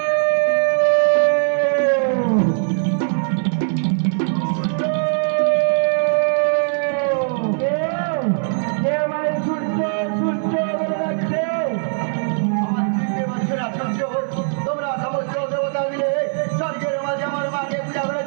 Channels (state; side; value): silent; left; digital silence